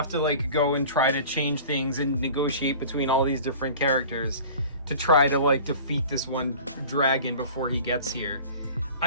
to like go and try to change things and negotiate between all these different characters to try to like defeat this one dragon before he gets here.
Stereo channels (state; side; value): inverted; both; correlation -0.42